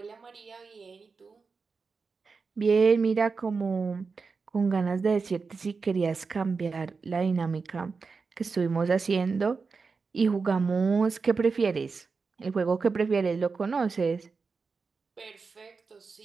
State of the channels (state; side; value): quieter; left; 4.7 dB